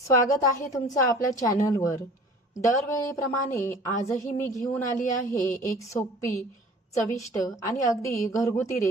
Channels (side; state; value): both; normal; correlation 0.46